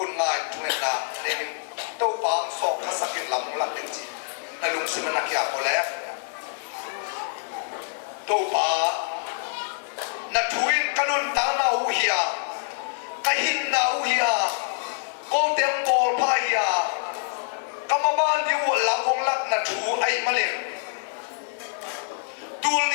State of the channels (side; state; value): right; silent; digital silence